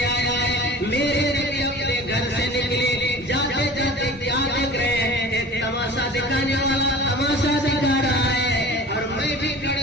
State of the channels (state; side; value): normal; both; correlation 0.41